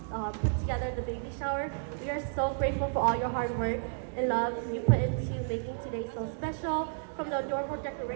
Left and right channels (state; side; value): silent; left; digital silence